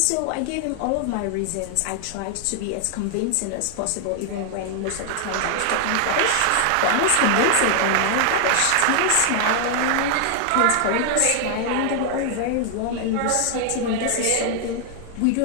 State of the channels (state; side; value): different; both; correlation 0.00